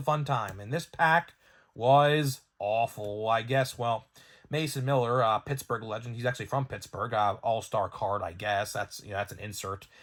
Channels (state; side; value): identical; both; correlation 1.00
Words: fun time. And this pack was awful, I guess. Well, Mason Miller, Pittsburgh legend. He's actually from Pittsburgh. All-star card, I guess. That's an insert.